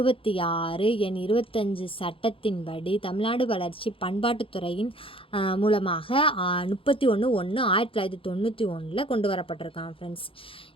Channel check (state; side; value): late; right; 0.26 ms